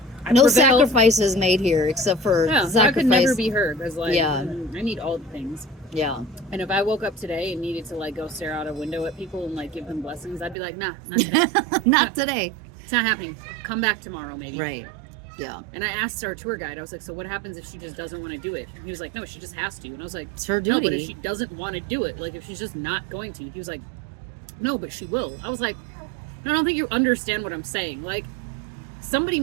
No prevailed. sacrifices made here except for sacrifice. I could never be heard. I was like, Yeah. I need all the things. Yeah. And if I woke up today and needed to like go stare out a window at people and like give them blessings, I'd be like, nah, not today. Not today. It's not happening. Come back tomorrow, maybe. Right. Yeah. And I asked our tour guide, I was like, so what happens if she just doesn't want to do it? And he was like, no, she just has to. And I was like, It's her no, but duty. if she doesn't want to do it, like if she's just not going to, he was like, no, but she will. I was like, I don't think you understand what I'm saying. Like, somebody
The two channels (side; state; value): left; drops out; at 10.6 s